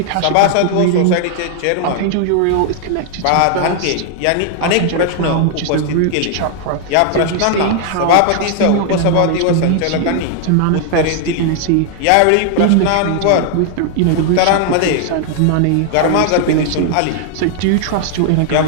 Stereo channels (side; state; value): both; different; correlation 0.00